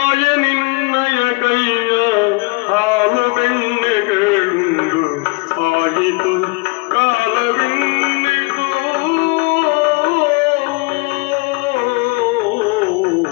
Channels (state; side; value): quieter; right; 27.8 dB